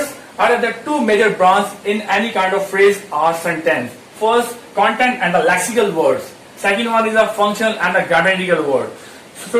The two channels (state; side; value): identical; both; correlation 1.00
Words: are the 2 major branches in any kind of phrase or sentence. First, content and the lexical words. Second one is the functional and the grammatical word.